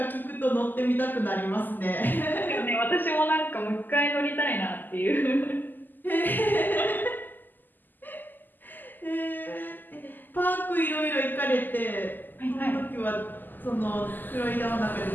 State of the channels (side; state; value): right; late; 0.088 ms